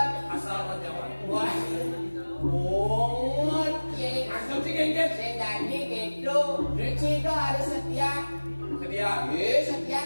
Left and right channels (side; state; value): both; inverted; correlation -1.00